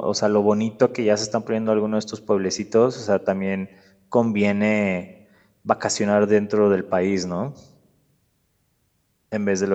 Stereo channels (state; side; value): identical; both; correlation 1.00